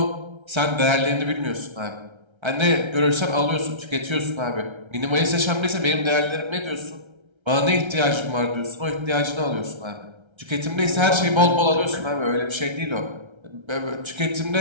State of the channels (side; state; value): left; late; 1.3 ms